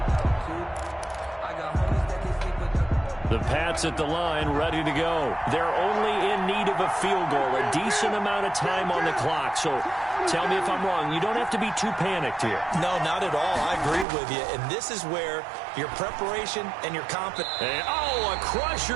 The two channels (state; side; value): drops out; left; at 14.1 s